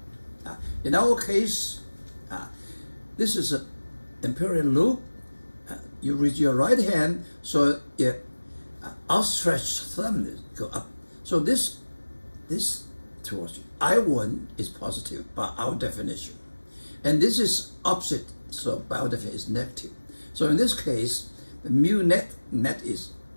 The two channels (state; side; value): inverted; both; correlation -1.00